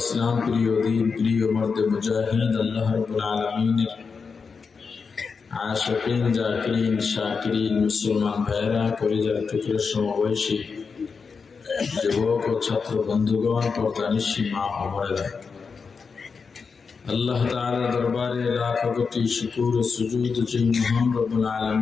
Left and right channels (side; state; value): right; quieter; 5.3 dB